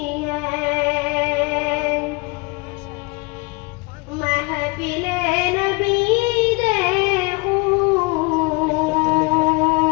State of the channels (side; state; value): right; quieter; 26.9 dB